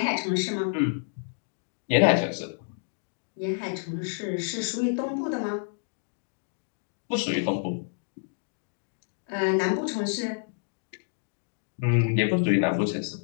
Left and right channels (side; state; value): right; silent; digital silence